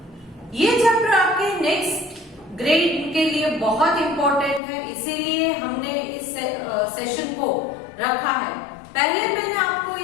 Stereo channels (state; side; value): drops out; right; at 4.6 s